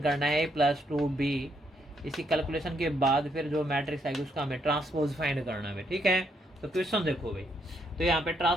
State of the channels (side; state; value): both; normal; correlation 0.75